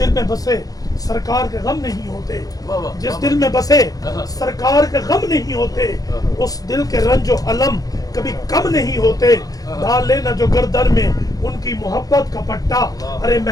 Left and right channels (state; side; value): late; right; 0.18 ms